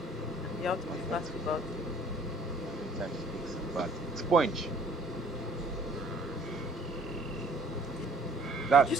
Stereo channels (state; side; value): normal; both; correlation 0.57